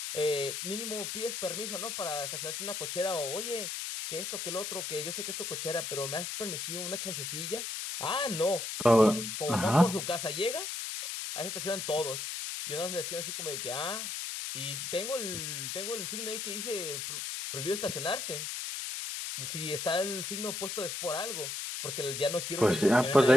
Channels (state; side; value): noise; left; hiss, 4 dB below the sound